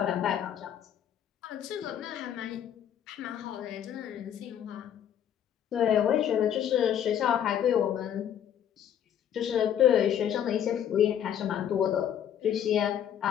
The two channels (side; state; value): right; quieter; 9.7 dB